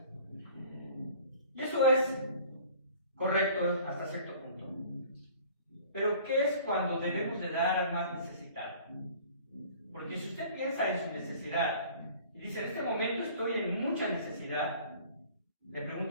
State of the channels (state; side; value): inverted; both; correlation -0.48